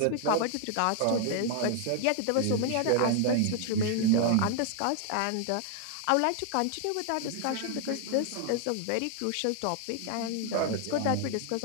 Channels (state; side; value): different; both; correlation 0.00